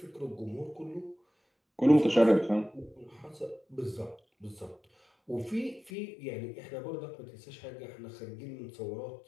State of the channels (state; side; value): drops out; right; at 5.9 s